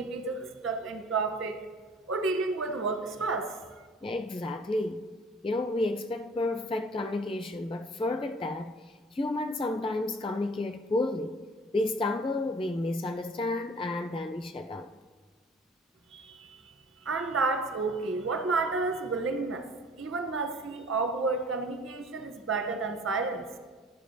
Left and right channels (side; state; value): both; normal; correlation 0.49